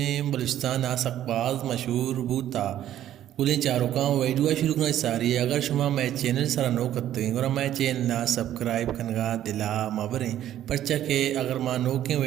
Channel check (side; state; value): left; quieter; 11.9 dB